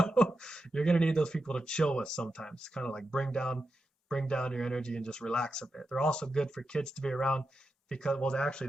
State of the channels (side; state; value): both; normal; correlation 0.89